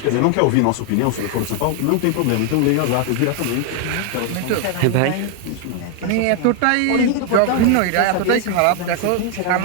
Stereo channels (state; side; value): different; both; correlation 0.01